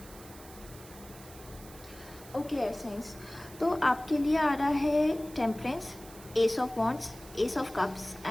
ओके एयर साइंस, तो आपके लिए आ रहा है temperance, S of wands, S of cups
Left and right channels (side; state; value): right; noise; hiss, 19 dB below the sound